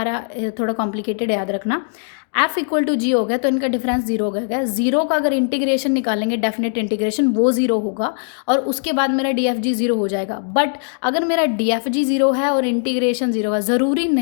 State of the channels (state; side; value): silent; right; digital silence